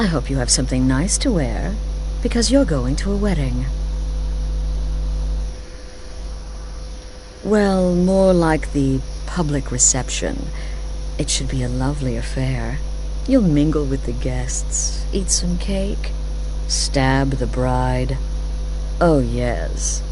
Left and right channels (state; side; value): identical; both; correlation 1.00